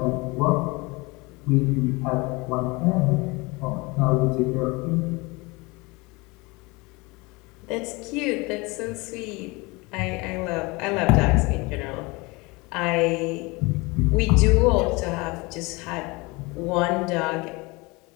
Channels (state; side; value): quieter; right; 25.4 dB